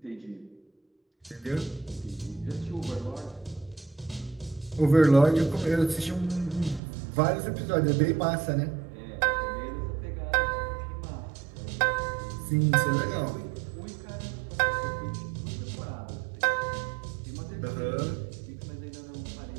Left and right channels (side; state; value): left; drops out; at 6.8 s